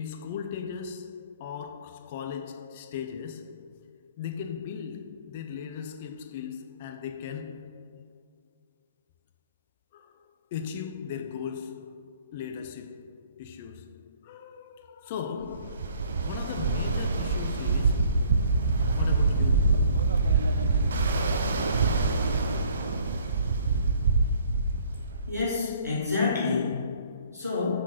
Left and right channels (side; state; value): both; inverted; correlation -0.57